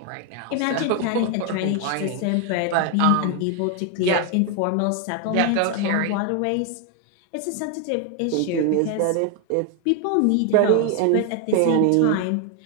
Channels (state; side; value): different; both; correlation 0.01